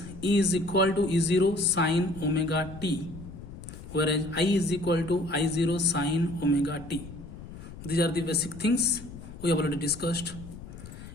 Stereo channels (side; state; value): left; noise; rumble, 14 dB below the sound